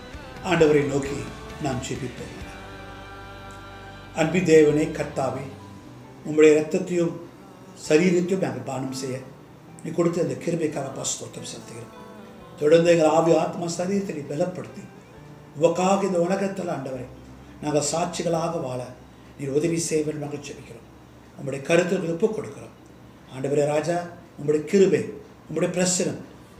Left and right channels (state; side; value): identical; both; correlation 1.00